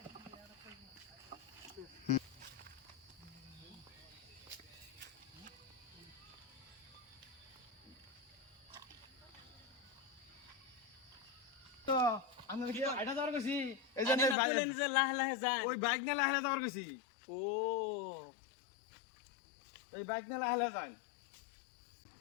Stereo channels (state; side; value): drops out; right; at 14.4 s